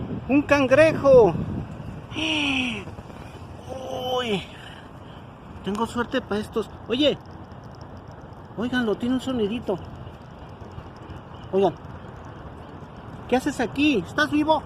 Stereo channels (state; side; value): identical; both; correlation 1.00